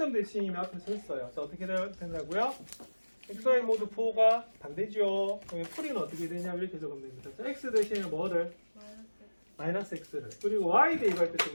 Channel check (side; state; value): both; inverted; correlation -1.00